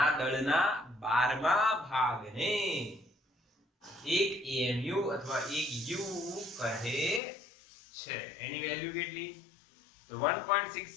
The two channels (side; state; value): right; drops out; at 7.2 s